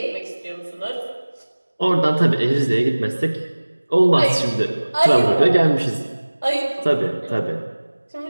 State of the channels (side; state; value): both; inverted; correlation -1.00